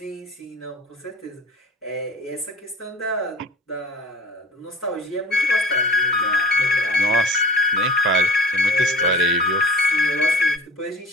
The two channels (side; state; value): both; normal; correlation 0.42